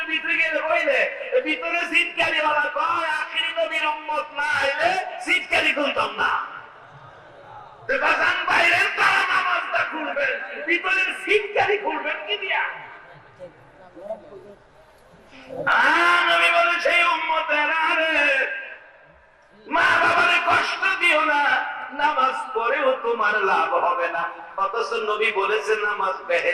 ভিতরে গেলে হইলে ভিতরে সিটকারি ওয়ালা কয় আখিরি নবীর উম্মত না হইলে সিটকারি খুলতাম না। তো বাজান বাইরের তারা নামাজটা খুলবেন, ভিতরের সিটকারি খুলবেন কি দিয়া? নবী বলে সেই উম্মতেরা রে, মা বাবারে কষ্ট দিও না, নামাজ পড়েও তোমার লাভ হবে না। অথচ নবী বলেছেন নামাজ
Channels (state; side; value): identical; both; correlation 1.00